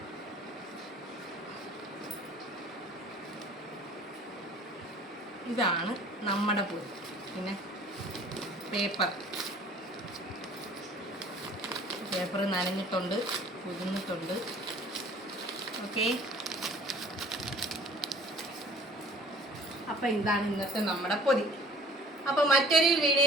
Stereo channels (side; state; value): both; normal; correlation 0.50